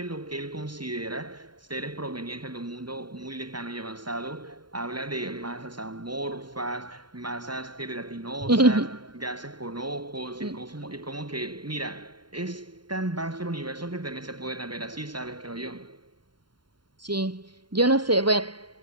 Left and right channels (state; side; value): late; left; 0.72 ms